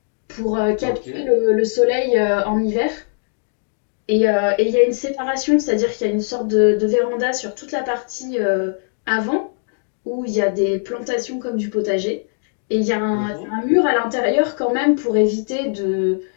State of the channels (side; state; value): right; silent; digital silence